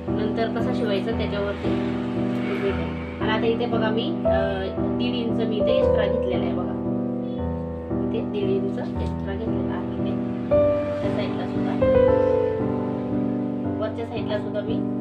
नंतर कसा शिवायचा त्याच्यावरती. आणि आता इथे बघा मी 1.5 इंच मी इथे एक्स्ट्रा घेतलेला आहे बघा. इथे 1.5 इंच एक्स्ट्रा घेतलेला आहे. इथे त्या साईडला सुद्धा, वरच्या साईडला सुद्धा मी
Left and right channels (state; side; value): identical; both; correlation 1.00